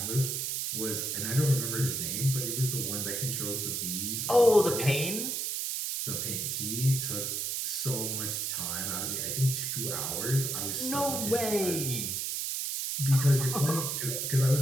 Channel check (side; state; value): right; noise; hiss, 1 dB below the sound